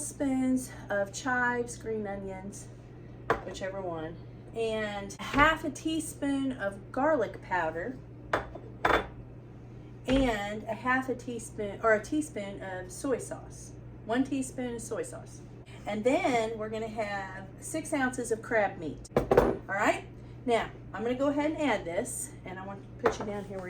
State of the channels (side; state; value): both; identical; correlation 1.00